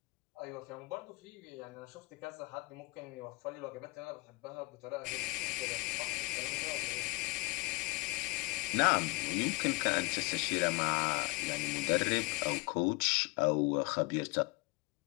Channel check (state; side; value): quieter; right; 24.7 dB